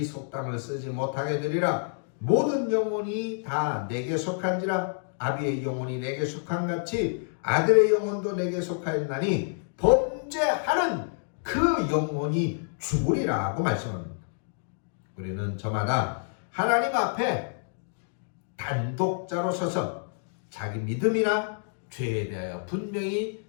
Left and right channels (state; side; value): silent; right; digital silence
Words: 속담을 쓰지 못하게 되리라. 모든 영혼이 다 내게 속한지라. 아비의 영혼이 내게 속한 같이 아들의 영혼도 내게 속하였나니 범죄하는 그 영혼이 죽으리라고 말씀합니다. 우리는 저마다 하나님 앞에 단독자로 서서 자기 믿음이나 죄에 대하여 분명히